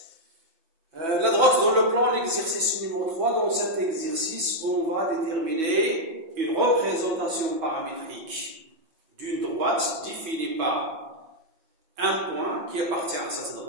La droite dans le plan, l'exercice numéro 3. Dans cet exercice, on va déterminer une représentation paramétrique d'une droite définie par un point qui appartient à cette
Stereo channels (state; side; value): late; left; 5.7 ms